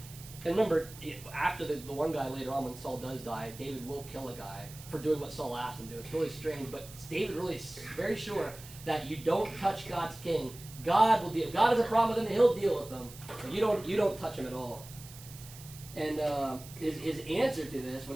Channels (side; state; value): right; noise; hiss, 17 dB below the sound